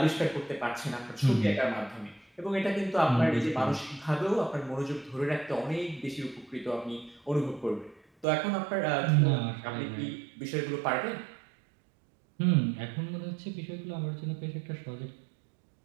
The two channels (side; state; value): left; drops out; at 8.2 s